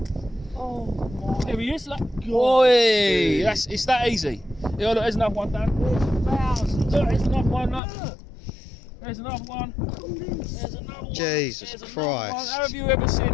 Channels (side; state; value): right; drops out; at 7.8 s